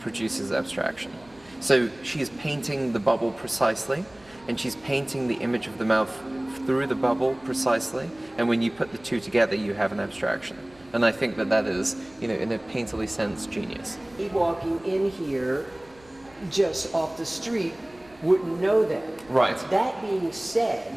produces abstraction. So she's painting the bubble precisely, and she's painting the image of the mouth through the bubble precisely, and when you put the two together, you have an abstraction. And I think that is, in a painterly sense, genius. Walking in here, just off the street, wouldn't know that. Right. That being said,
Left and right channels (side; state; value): right; noise; rumble, 27 dB below the sound